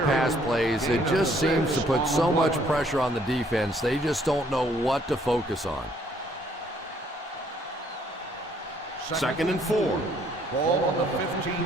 pass plays, it just seems to put so much pressure on the defense. They just don't know what to focus on. Second and 4. Ball on the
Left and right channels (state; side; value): normal; both; correlation 0.65